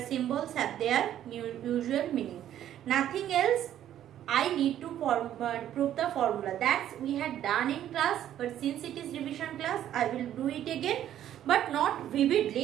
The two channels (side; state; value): left; quieter; 11.4 dB